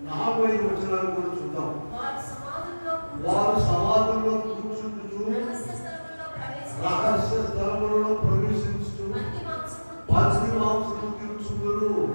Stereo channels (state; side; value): inverted; both; correlation -1.00